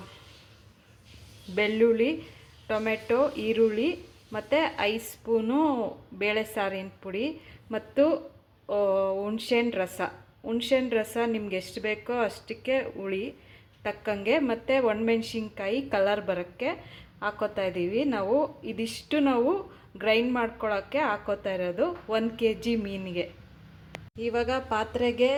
ಬೆಳ್ಳುಳ್ಳಿ, ಟೊಮೆಟೊ, ಈರುಳ್ಳಿ ಮತ್ತು 5 ಸ್ಪೂನು ಬೇಳೆ ಸಾರಿನ ಪುಡಿ ಮತ್ತು ಹುಣ್ಸೆಹಣ್ಣು ರಸ ನಿಮ್ಗೆ ಎಷ್ಟು ಬೇಕೋ ಅಷ್ಟಕ್ಕೆ ಹುಳಿ ತಕ್ಕಂಗೆ ಮತ್ತು ಒಣಮೆಣ್ಸಿನ್ಕಾಯಿ ಕಲರ್ ಬರೋಕ್ಕೆ ಹಾಕೋತಾ ಇದ್ದೀವಿ. ಇದಿಷ್ಟು ನಾವು ಗ್ರೈಂಡ್ ಮಾಡ್ಕೊಳ್ಳೋಕ್ಕೆ ಹಾಕೋತಾ ಇರೋದು 1 kg ಮೀನಿಗೆ. ಇವಾಗ ಪಾತ್ರೆಗೆ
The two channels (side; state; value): both; identical; correlation 1.00